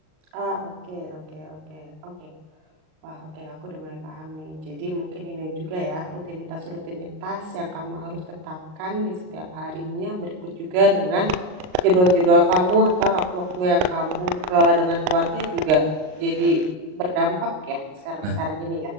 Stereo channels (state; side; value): late; left; 38 ms